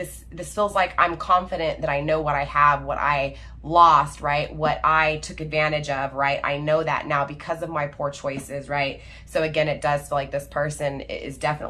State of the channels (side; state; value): both; identical; correlation 1.00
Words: feels like I'm confident that I know what I have, what I lost, right? What I took advantage of, right? I know that now because of my poor choices, right? So again, it does feel like this person is